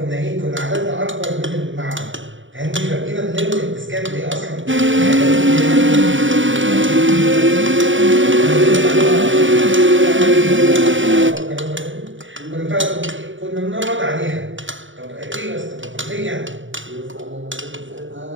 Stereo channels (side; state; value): left; late; 0.56 ms